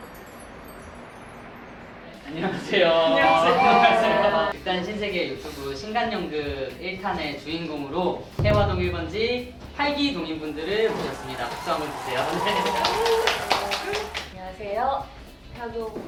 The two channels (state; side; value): identical; both; correlation 1.00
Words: 안녕하세요. 안녕하세요. 일단 신세계 유튜브 신간연극 1탄의 주인공으로 해화동 1번지 활기 동인분들을 모셨습니다. 박수 한번 주세요. 안녕하세요.